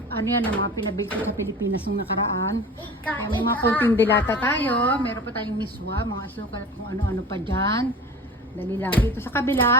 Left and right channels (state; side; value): normal; both; correlation 0.36